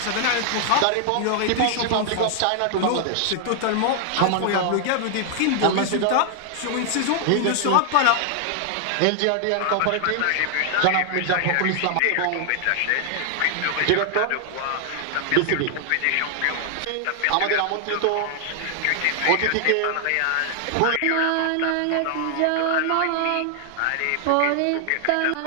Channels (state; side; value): different; both; correlation 0.00